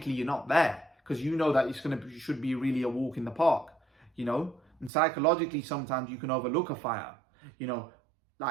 you're not there because you know that it should be really a walk in the park, you know. And psychologically sometimes you can overlook a fighter, you know,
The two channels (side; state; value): left; drops out; at 4.9 s